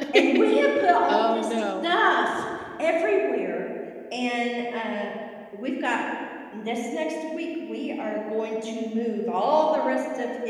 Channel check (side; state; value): both; identical; correlation 1.00